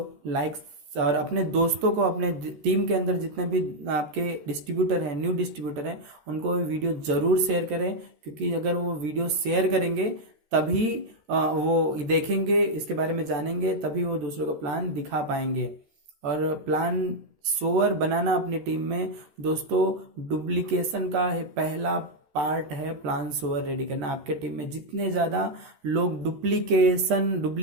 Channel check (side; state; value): left; late; 13 ms